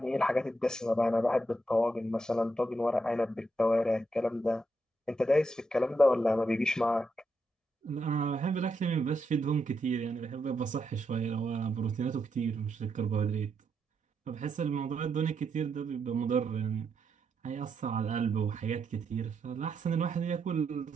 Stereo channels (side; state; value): both; normal; correlation 0.82